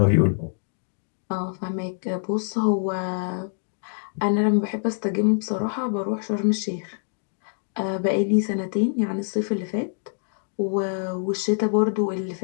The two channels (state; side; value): silent; right; digital silence